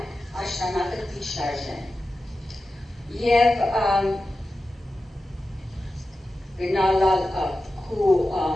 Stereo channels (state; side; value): normal; both; correlation 0.93